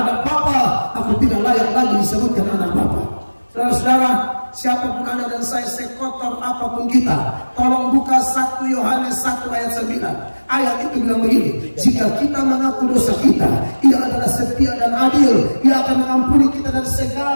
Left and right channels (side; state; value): both; inverted; correlation -1.00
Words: Bapa. Aku tidak layak lagi disebutkan anak Bapa. Saudara-saudara, siapapun Anda dan saya, sekotor apapun kita, tolong buka 1 Yohanes 1 ayat 9. Ayat itu bilang begini, jika kita mengaku dosa kita, Ia adalah setia dan adil. Ia akan mengampuni kita dari